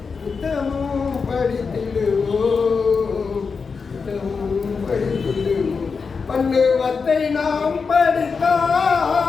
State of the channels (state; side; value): quieter; right; 5.1 dB